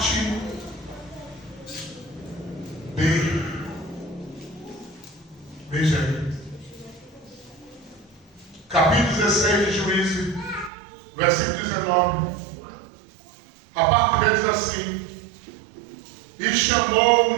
B. Veja aí. Capítulo 16 de Juízes, versículo 19. A parte B diz assim: e chamou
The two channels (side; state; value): left; drops out; at 10.7 s